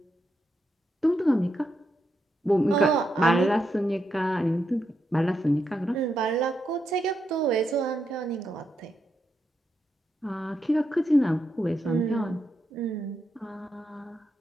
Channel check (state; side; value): normal; both; correlation 0.82